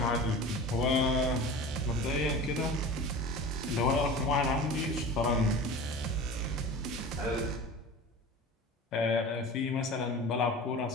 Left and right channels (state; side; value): normal; both; correlation 0.35